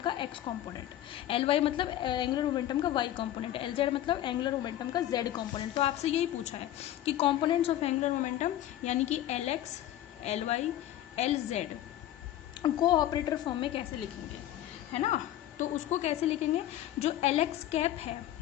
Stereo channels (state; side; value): quieter; right; 12.9 dB